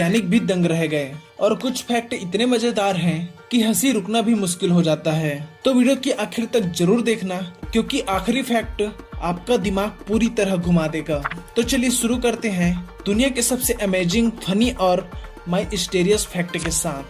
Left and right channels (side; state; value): both; identical; correlation 1.00